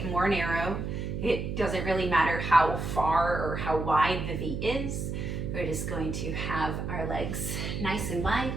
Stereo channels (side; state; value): right; noise; hum, 3 dB below the sound